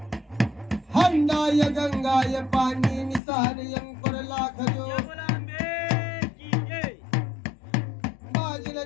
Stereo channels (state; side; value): drops out; right; at 3.2 s